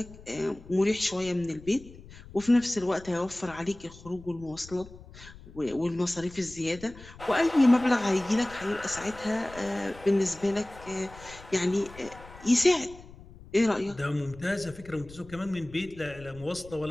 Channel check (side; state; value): left; noise; rumble, 19 dB below the sound